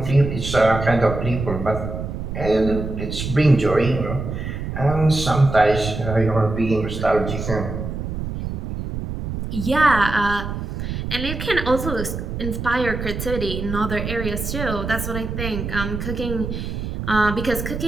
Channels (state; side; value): noise; right; rumble, 5 dB below the sound